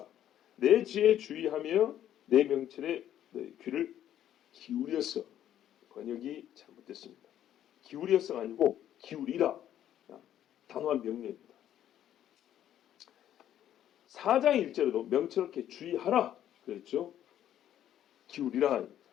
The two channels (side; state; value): right; quieter; 11.2 dB